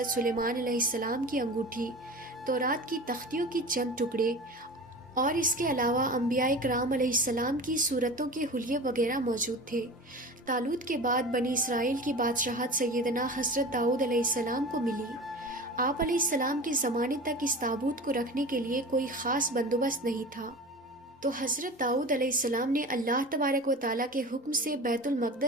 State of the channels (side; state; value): both; normal; correlation 0.34